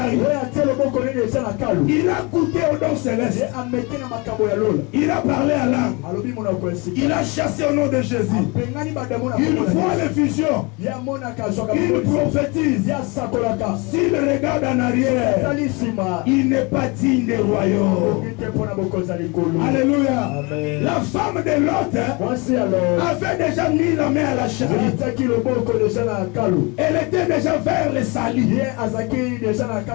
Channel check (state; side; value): quieter; right; 28.1 dB